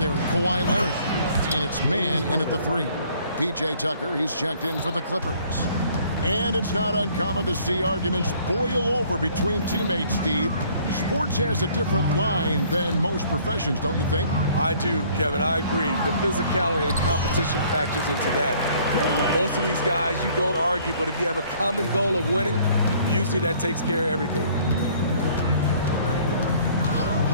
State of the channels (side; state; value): both; inverted; correlation -0.58